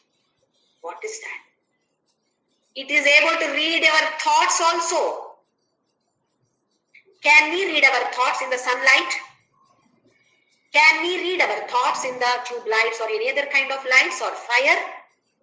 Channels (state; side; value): identical; both; correlation 1.00